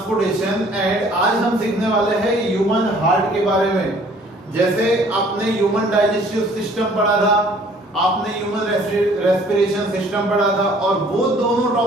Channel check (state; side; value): normal; both; correlation 0.56